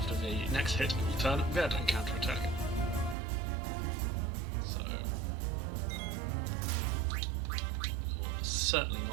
the next hit, it will turn red and counterattack. So, it will certainly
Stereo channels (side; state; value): left; drops out; at 3.2 s